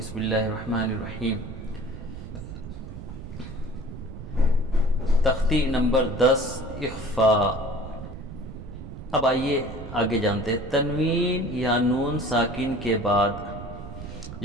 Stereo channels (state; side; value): noise; right; rumble, 10 dB below the sound